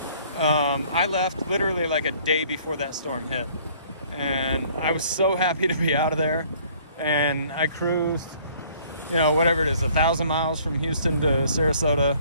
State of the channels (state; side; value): inverted; both; correlation -0.57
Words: I left literally like a day before that storm hit. And I was so happy to be out of there. And I cruised, you know, whatever it is, 1,000 miles from Houston to Sarasota.